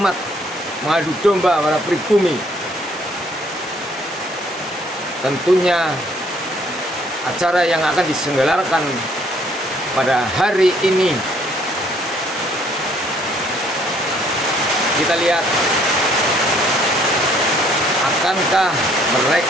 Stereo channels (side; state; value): both; normal; correlation 0.63